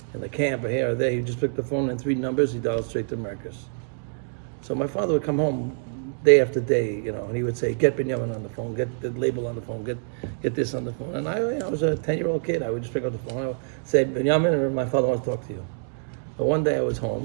in the camp or here or there, he just picked the phone and 3 numbers, he dialed straight to Marcus. So my father would come home day after day, and he would say, "Get Benjamin on the phone, get the label on the phone, get this on the phone." And I was a 10-year-old kid. I would just pick up the phone. I would say, "Benjamin," and my father wants to talk to you. But one day I was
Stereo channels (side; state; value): left; silent; digital silence